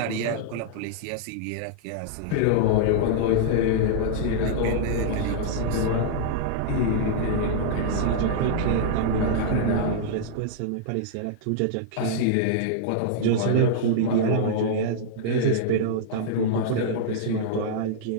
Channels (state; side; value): different; both; correlation -0.02